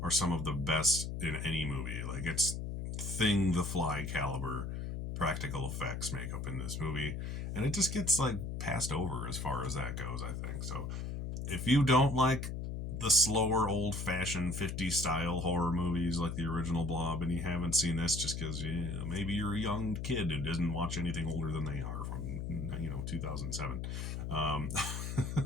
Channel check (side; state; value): left; noise; hum, 4 dB below the sound